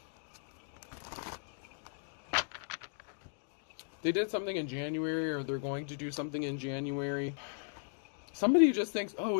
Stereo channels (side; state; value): right; silent; digital silence